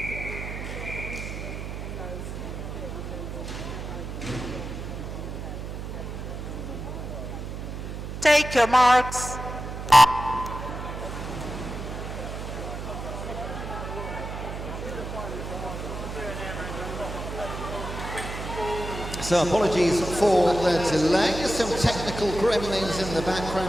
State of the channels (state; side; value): noise; right; hum, 7 dB below the sound